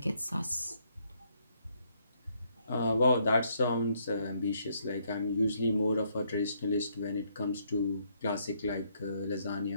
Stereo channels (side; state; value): both; inverted; correlation -0.72